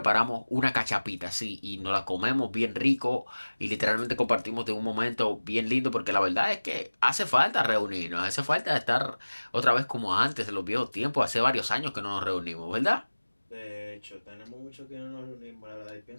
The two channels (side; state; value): both; inverted; correlation -1.00